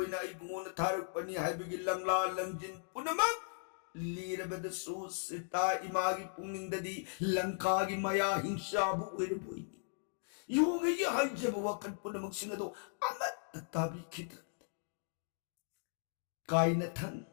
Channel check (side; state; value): right; silent; digital silence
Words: इबुन थारक पनी हाइबिगी लंगला लंजिन पुनमक लीरबदसु सीता इमागी पुंगनिंगददी लंकागी मया हिंसाबु ओइरबोइनी योंगई हाइजब वकन पुनमक सिंगदो अमत ताबी खिद काइना थंग